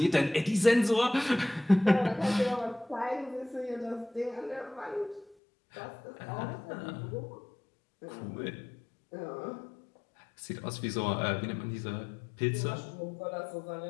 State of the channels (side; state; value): right; drops out; at 5.4 s